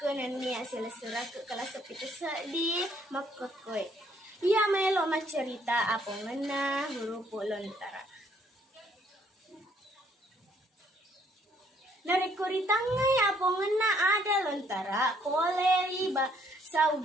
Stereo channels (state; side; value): normal; both; correlation 0.66